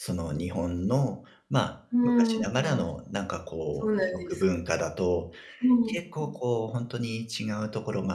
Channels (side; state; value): both; identical; correlation 1.00